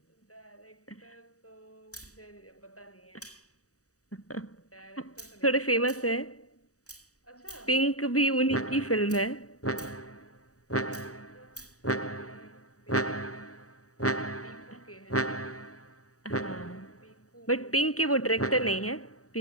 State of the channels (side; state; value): right; late; 0.66 ms